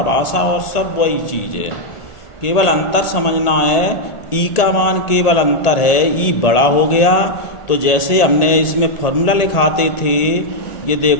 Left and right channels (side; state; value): right; late; 1.8 ms